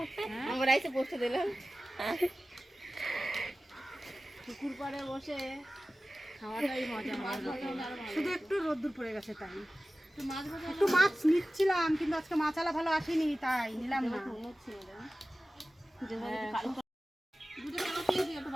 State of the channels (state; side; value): normal; both; correlation 0.96